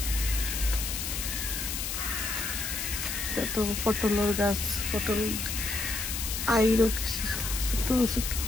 তো পটলের গাছ, পটল আইরও কিছু ছোট ছোট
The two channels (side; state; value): left; noise; hiss, 3 dB below the sound